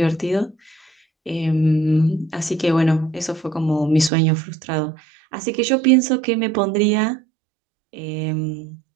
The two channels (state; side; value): drops out; left; at 4.1 s